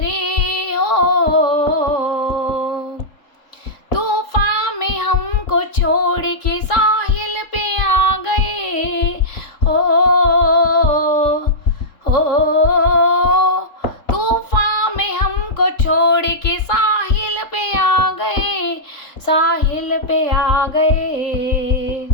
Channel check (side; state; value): right; late; 3.7 ms